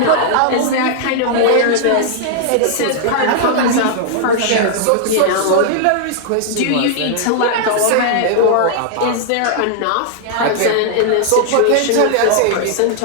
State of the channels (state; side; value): different; both; correlation -0.01